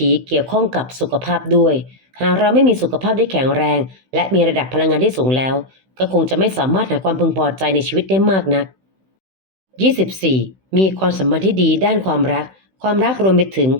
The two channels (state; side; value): late; left; 16 ms